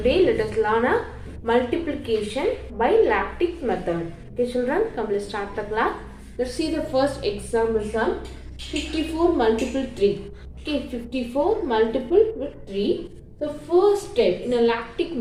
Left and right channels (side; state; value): both; identical; correlation 1.00